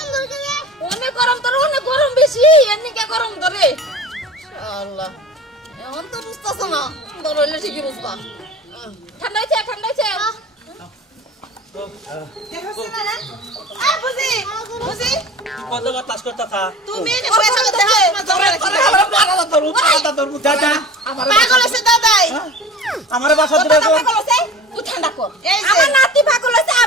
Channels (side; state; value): both; normal; correlation 0.39